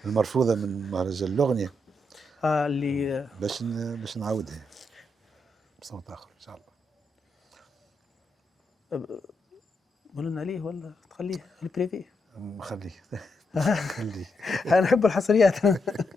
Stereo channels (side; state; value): both; normal; correlation 0.81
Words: المرفوضة من مهرجان الأغنية اللي باش نعاودها بصوت آخر إن شاء الله. قول لنا عليه ولا تخليه البريفي؟ نخليه خلي انا نحب الحصريات.